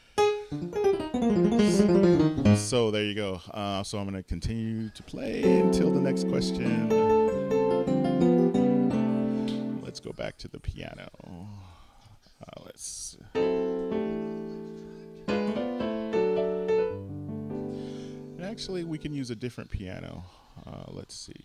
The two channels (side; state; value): both; identical; correlation 1.00